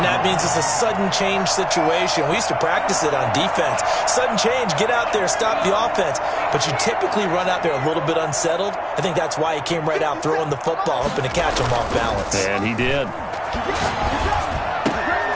that means it's a sudden change situation. We used to practice it on defense. Sudden change, get out there, stop the offense. But you typically run out there a little bit unsettled. I think that's why he came right out throwing the football, hoping to catch him off balance. And he did.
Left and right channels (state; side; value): identical; both; correlation 1.00